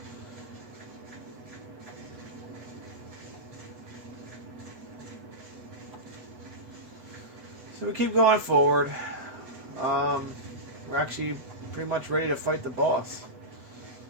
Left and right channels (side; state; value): left; late; 8.1 ms